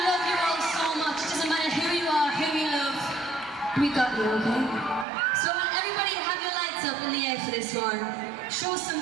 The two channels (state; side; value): drops out; left; at 5.1 s